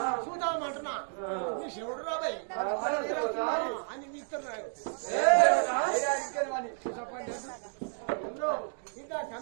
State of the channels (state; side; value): silent; left; 57 dB below the other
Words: చూద్దామంటున్నా నీ శివుడు రాబాయి అని ఇస్తున్నారు ఇంకా